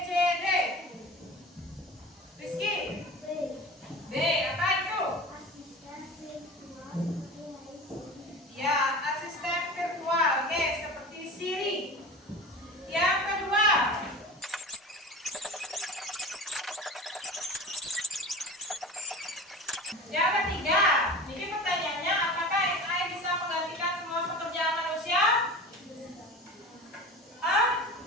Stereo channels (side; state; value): both; normal; correlation 0.34